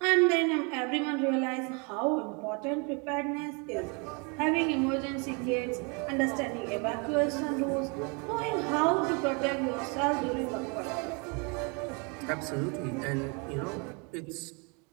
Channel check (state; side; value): quieter; left; 33.0 dB